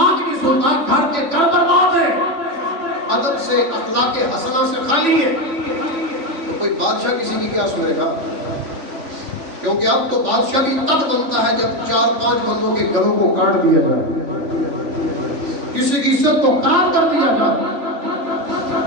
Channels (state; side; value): late; left; 3.5 ms